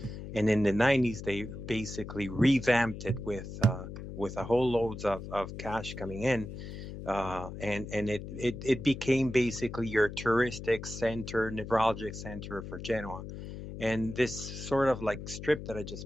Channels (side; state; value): left; noise; hum, 10 dB below the sound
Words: And in the 90s, they basically revamped it with a whole loads of cash coming in. And it became basically your touristic center, neurologic center for Genoa. And this sort of like strip that I